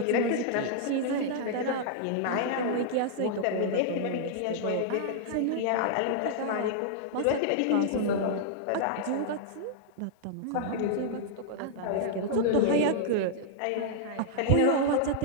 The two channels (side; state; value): both; different; correlation -0.01